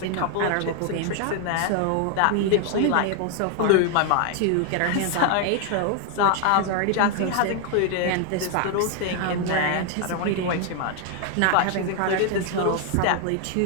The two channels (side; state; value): both; different; correlation 0.00